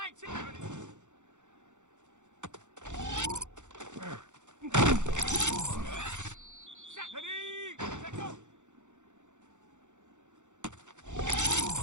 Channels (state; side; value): late; left; 0.85 ms